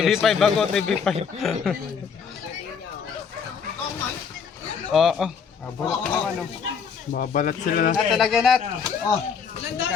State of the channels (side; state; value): right; quieter; 6.4 dB